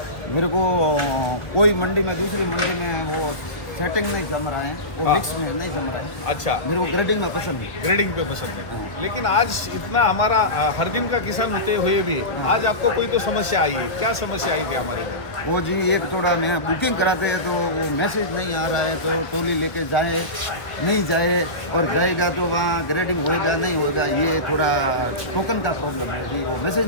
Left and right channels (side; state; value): right; late; 1.3 ms